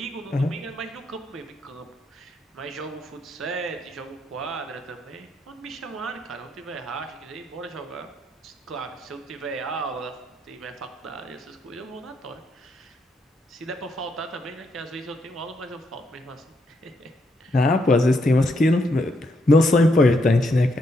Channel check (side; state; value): both; normal; correlation 0.77